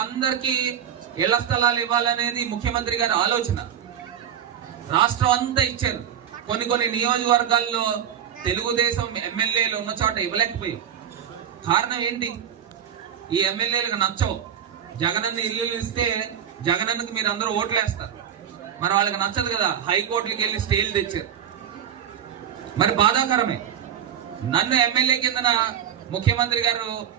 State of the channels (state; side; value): quieter; left; 9.1 dB